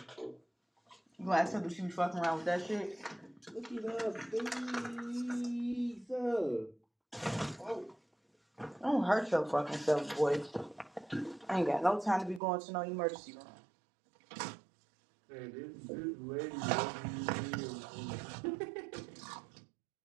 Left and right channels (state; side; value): drops out; left; at 12.4 s